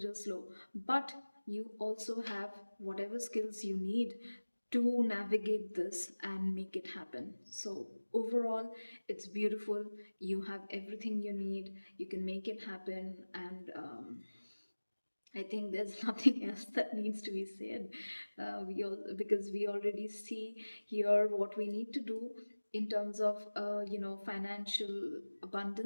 slow. But you also have whatever skills you need to navigate this and make it happen. So overall, it's beautiful. You have everything you need, you can make it happen. And I think there's nothing else that needs to be said. Because we already see here what we need to do in terms of financial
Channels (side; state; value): both; inverted; correlation -1.00